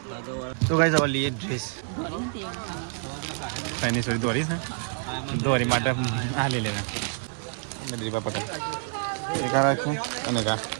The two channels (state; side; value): silent; left; 60 dB below the other